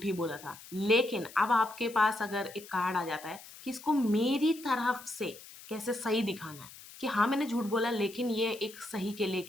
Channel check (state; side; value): noise; left; hiss, 18 dB below the sound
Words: ही बोला था, लेकिन अब आपके पास अगर एक कार्ड आ जाता है कि इसको मेरी तरफ से कैसे सही दिखाना है, कि हाँ, मैंने झूठ बोला लेकिन ये एक सही के लिए